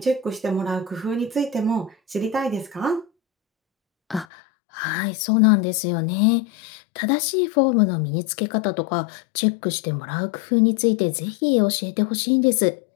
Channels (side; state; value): right; drops out; at 4.2 s